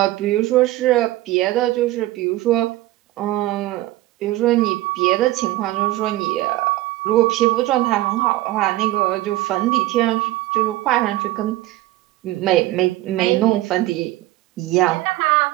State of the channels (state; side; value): quieter; left; 16.8 dB